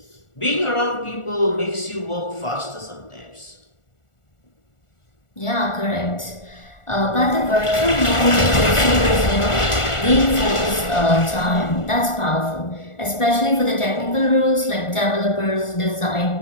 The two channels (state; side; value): late; right; 1.4 ms